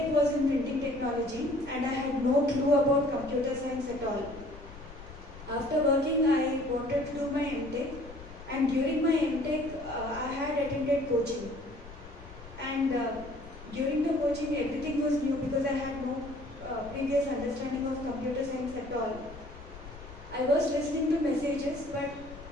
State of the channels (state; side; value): noise; left; rumble, 16 dB below the sound